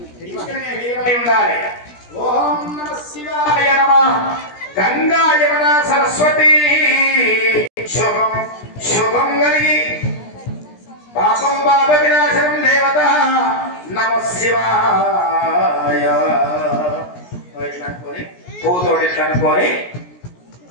ఉండాలి. ఓం నమ శివాయ నమః. గంగా యమున సరస్వతి శుభం శుభం కలిగి పాపం పాప వినాశనం దేవత నమ శివాయ. అనుకోని పువ్వుతోటి ఇట్లా అనుకోని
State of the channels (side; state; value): right; late; 17 ms